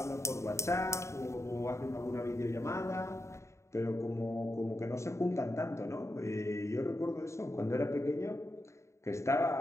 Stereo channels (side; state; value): right; late; 0.14 ms